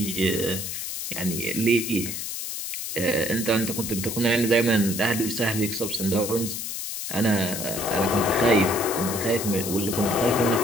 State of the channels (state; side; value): noise; left; hiss, 5 dB below the sound